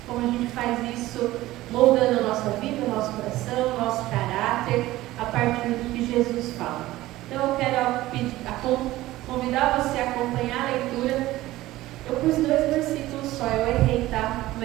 Como a gente faz isso moldando a nossa vida, o nosso coração, o nosso caráter, a partir do que Jesus fala. Então eu quero convidar você a acompanhar a leitura. Eu pus 2 versículos só, eu errei, tá?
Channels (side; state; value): left; quieter; 16.7 dB